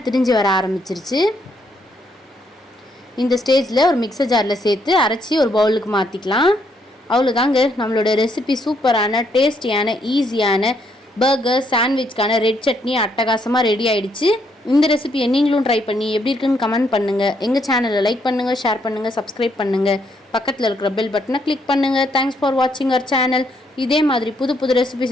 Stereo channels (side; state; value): both; normal; correlation 0.73